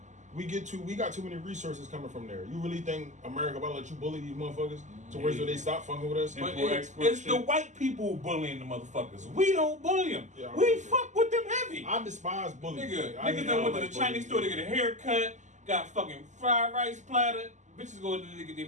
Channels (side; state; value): left; late; 0.34 ms